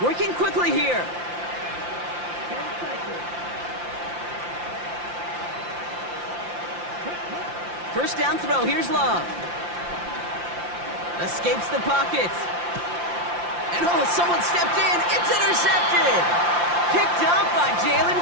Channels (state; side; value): late; left; 5.8 ms